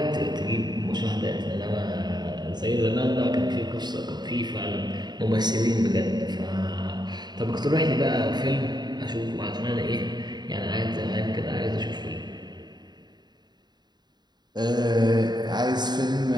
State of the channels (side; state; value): left; late; 0.20 ms